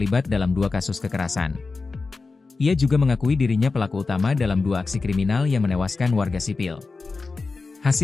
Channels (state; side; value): quieter; right; 4.0 dB